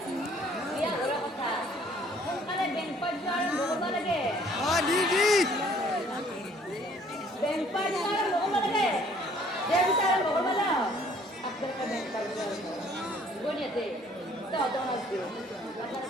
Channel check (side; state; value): both; normal; correlation 0.59